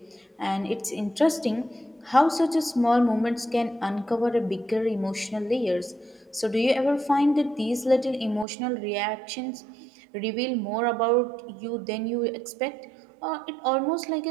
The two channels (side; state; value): left; drops out; at 8.5 s